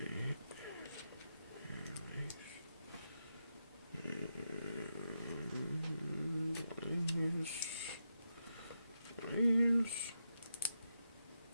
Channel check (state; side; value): inverted; both; correlation -0.86